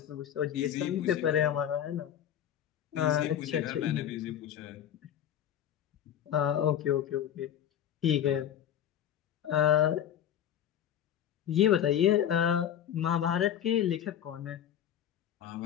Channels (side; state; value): right; quieter; 10.0 dB